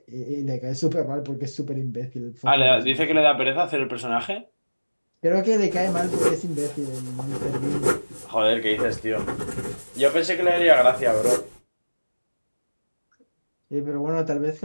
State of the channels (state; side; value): inverted; both; correlation -1.00